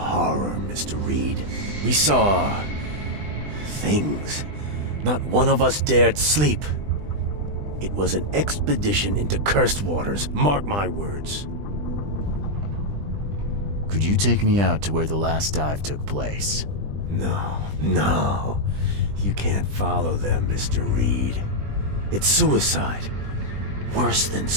Mr. Reed. We saw things. Not one of us dared sleep. It was an expedition into cursed waters, mark my words. Could you take me out to where the last dive took place? No. You can't follow them, Mr. Reed. It's suicide. Worse than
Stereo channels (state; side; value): late; left; 20 ms